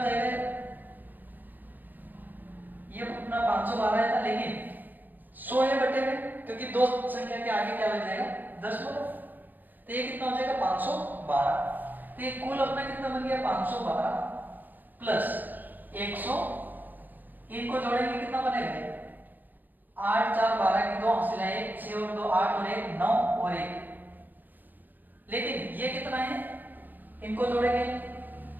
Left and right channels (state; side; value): late; left; 0.089 ms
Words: जाएगा, ये अपना 512 था, लेकिन 100 है बटे में, क्योंकि दो संख्या के आगे क्या लग जाएगा 10 बोलो, तो ये कितना हो जाएगा 512। तो ये कुल अपना कितना बन गया 512 प्लस 100, इनको जोड़ेंगे कितना बनेगा 8 4 12 की 2 हासिल है 1, 6 और 2 8 और 1 9 और 1, लेकिन ये कितना है, इनको जोड़ेंगे